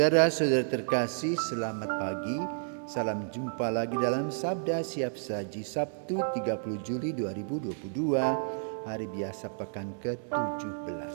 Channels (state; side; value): silent; left; digital silence